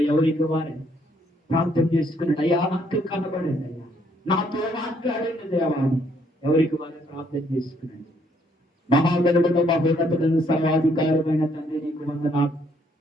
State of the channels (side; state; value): both; normal; correlation 0.68